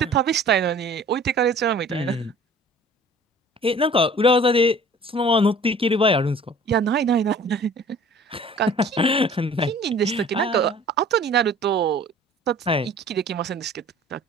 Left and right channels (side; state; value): both; normal; correlation 0.48